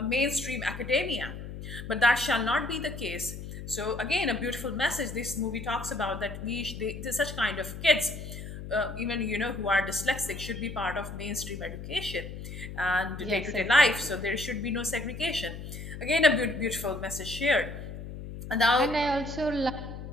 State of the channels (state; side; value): noise; left; hum, 9 dB below the sound